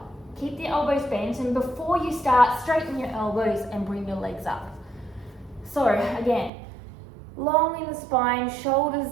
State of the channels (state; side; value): drops out; left; at 6.5 s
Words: Keep the elbows bent, and before you start, straighten your elbows and bring your legs up. So again, long in the spine,